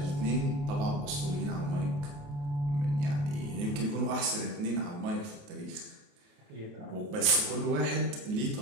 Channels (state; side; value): late; left; 28 ms